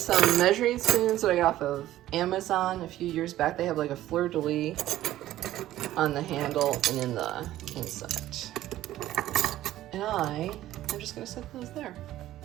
measuring spoons that I got off of Amazon a few years back. They have like a fleur-de-lis on the handle and in the inside. And I'm just gonna set those there.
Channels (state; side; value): quieter; left; 14.1 dB